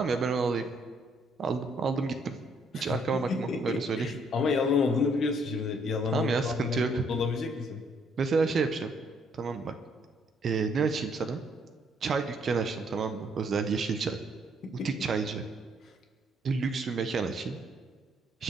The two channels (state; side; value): normal; both; correlation 0.68